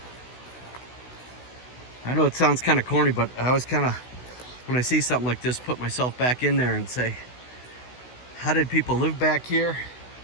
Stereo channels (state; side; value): late; right; 16 ms